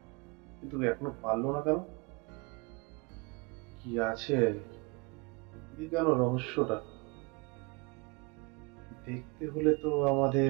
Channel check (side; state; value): left; quieter; 28.4 dB